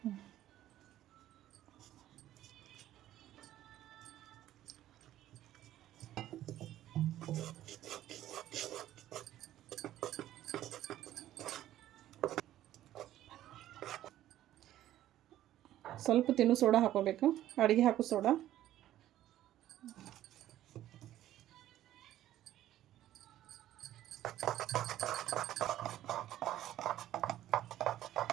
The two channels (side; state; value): left; quieter; 13.2 dB